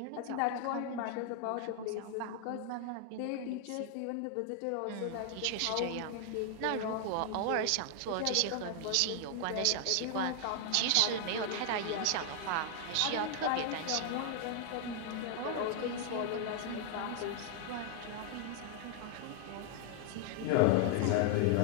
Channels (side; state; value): both; different; correlation 0.00